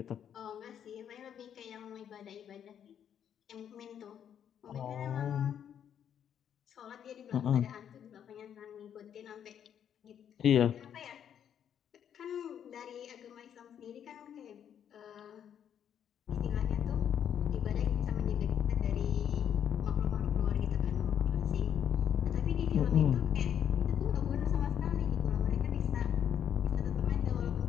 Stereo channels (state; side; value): quieter; right; 9.0 dB